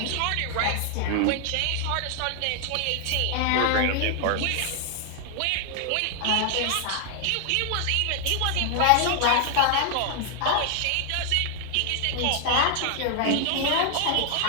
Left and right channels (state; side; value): different; both; correlation 0.00